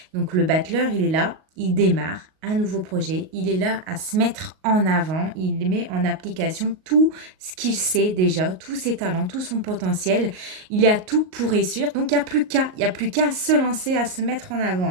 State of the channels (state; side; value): late; left; 38 ms